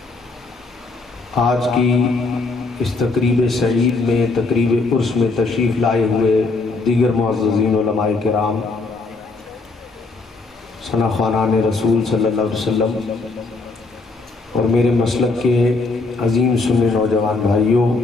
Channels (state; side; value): quieter; right; 3.6 dB